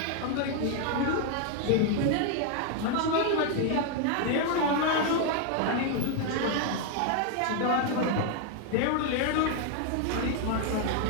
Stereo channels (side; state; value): both; different; correlation 0.00